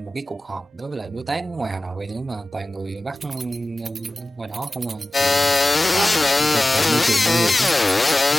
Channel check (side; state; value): both; normal; correlation 0.96